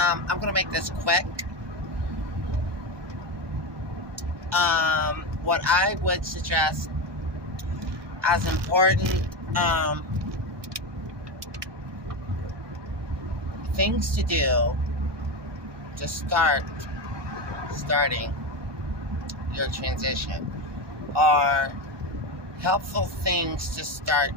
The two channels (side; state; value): left; late; 1.2 ms